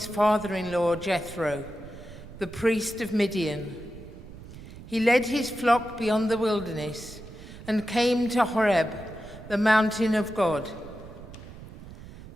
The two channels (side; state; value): right; noise; rumble, 15 dB below the sound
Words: father-in-law Jethro, the priest of Midian. He led his flock beyond the wilderness and came to Horeb, the mountain of God.